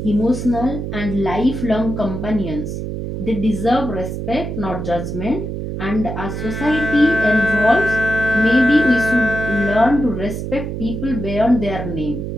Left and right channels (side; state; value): right; noise; hum, 5 dB below the sound